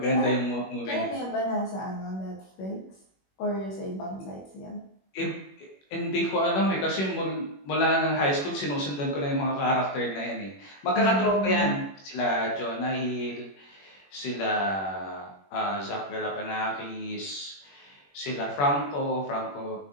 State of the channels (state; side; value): late; right; 21 ms